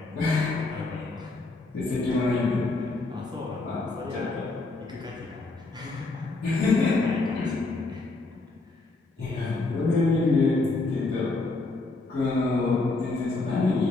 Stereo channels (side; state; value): right; quieter; 3.4 dB